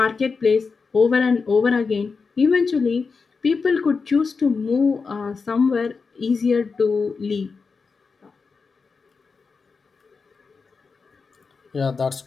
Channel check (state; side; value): quieter; right; 4.9 dB